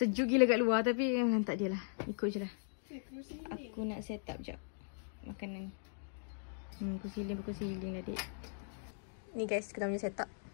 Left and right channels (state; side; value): silent; right; digital silence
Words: gila kat luar tapi tak dia lah. Ikut je lah. Aku nak set up jap makanan. Kursi healing lah dik. Ni guys, kita punya set up.